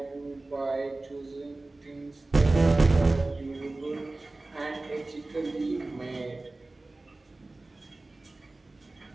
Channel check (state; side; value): quieter; left; 3.0 dB